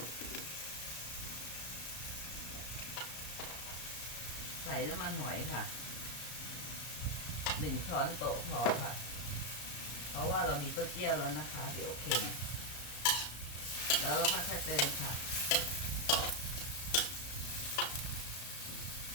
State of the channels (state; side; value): late; right; 34 ms